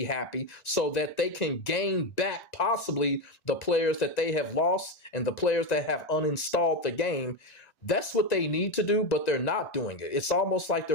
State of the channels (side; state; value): right; late; 2.0 ms